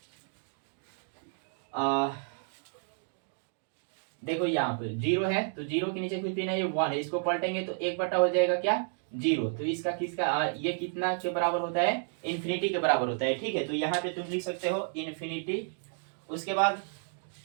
देखो यहाँ पे 0 है तो 0 के नीचे कुछ भी नहीं है, 1 है, इसको पलटेंगे तो 1 बटा हो जाएगा क्या 0। तो इसका किसका ये कितना के बराबर होता है, इन्फिनिटी के बराबर होता है। ठीक है, तो यहाँ पे तुम लिख सकते हो इन्फिनिटी। उसके बाद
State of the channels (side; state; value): left; silent; digital silence